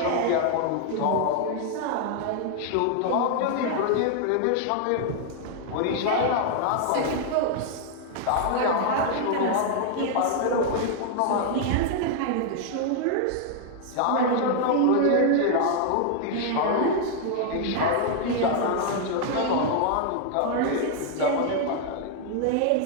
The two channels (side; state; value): both; different; correlation 0.00